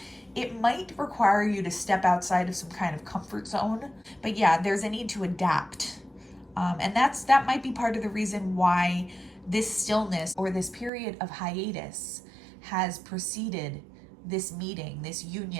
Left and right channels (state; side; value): drops out; left; at 10.9 s